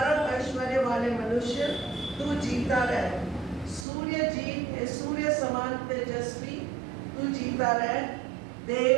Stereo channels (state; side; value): drops out; left; at 3.9 s